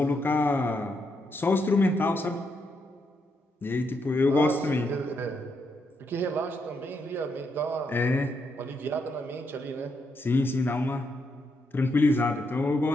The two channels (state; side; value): normal; both; correlation 0.79